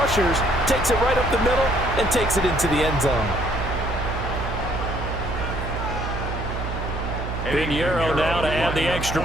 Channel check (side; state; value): right; noise; hum, 5 dB below the sound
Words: takes it right up the middle, and takes it into the end zone. Pinheiro now to add the extra